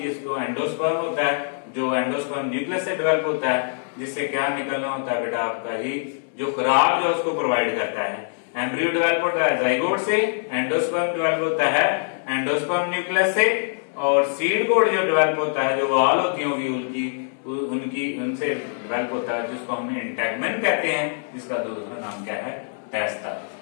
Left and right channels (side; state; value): right; silent; digital silence